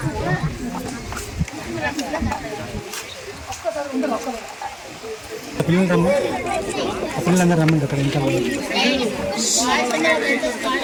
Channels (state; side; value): identical; both; correlation 1.00